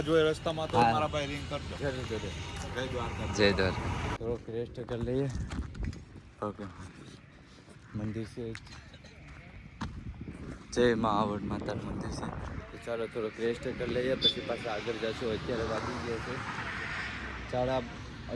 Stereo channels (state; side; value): identical; both; correlation 1.00